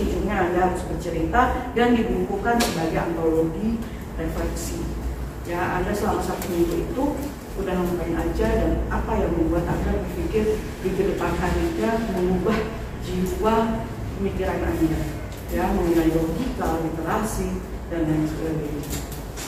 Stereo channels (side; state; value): both; identical; correlation 1.00